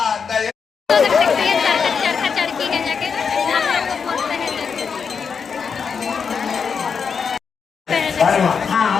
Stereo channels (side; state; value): right; quieter; 6.1 dB